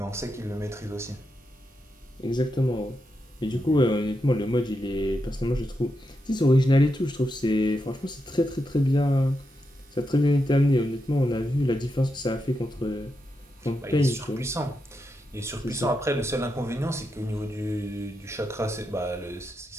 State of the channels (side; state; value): both; normal; correlation 0.85